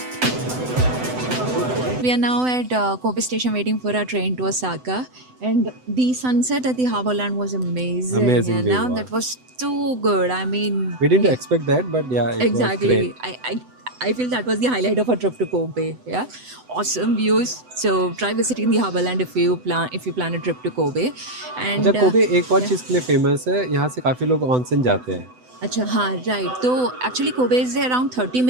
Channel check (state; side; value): late; left; 7.9 ms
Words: We are now at Kobe Station waiting for our train to Osaka, and the sunset at the Harborland was amazing. Amazing and view, now wow. that was too good. I mean, We didn't expect that, but yeah, it exactly. was great. I feel that was the highlight of our trip to Kobe. Yeah, awesome views. So try visiting the Harborland if you plan a trip to Kobe. And अच्छा Kobe एक और चीज़ के लिए famous है. यहाँ से काफ़ी लोग ऑनसेन जाते हैं. Acha, हाँ, right. So actually Kobe is around 30